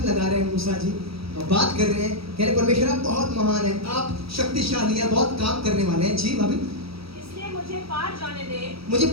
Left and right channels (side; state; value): left; late; 0.76 ms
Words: लगा रहे हैं मूसा जी और बात कर रहे हैं, कह रहे परमेश्वर आप बहुत महान है, आप शक्तिशाली हैं, बहुत काम करने वाले हैं। जी भाभी, इसलिए मुझे पार जाने दे, मुझे